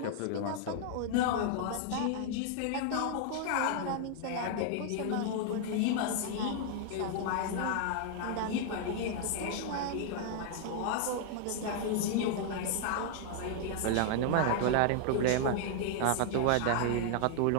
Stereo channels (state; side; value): different; both; correlation 0.00